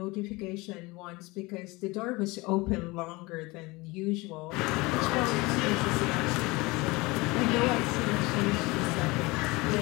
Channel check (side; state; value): right; quieter; 23.5 dB